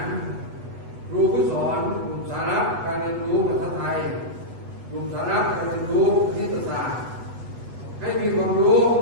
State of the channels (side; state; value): left; late; 8.1 ms